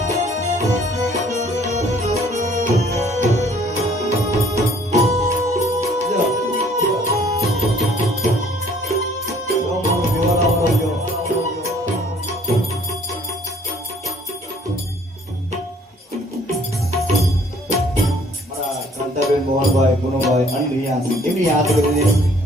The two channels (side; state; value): both; normal; correlation 0.58